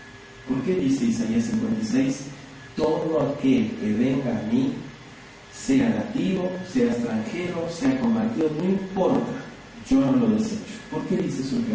¿Por qué dice Isaías 56? Todo aquel que venga a mí, sea nativo, sea extranjero, sea convertido, no importa, yo no lo desecho. ¿Por qué dice su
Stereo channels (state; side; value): identical; both; correlation 1.00